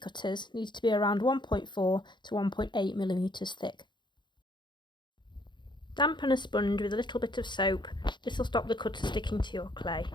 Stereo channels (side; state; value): right; late; 0.22 ms